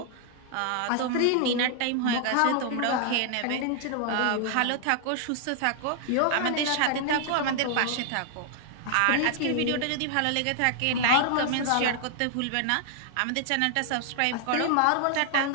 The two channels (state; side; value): different; both; correlation -0.01